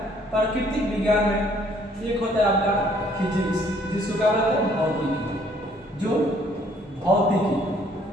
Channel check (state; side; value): normal; both; correlation 0.62